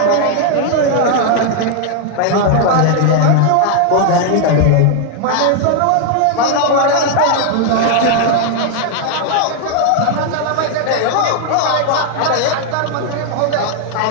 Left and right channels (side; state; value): both; different; correlation 0.00